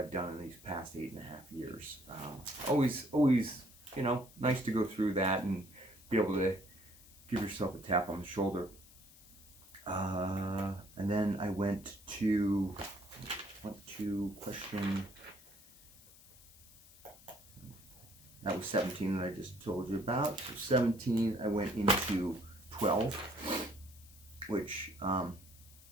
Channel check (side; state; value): left; noise; hiss, 22 dB below the sound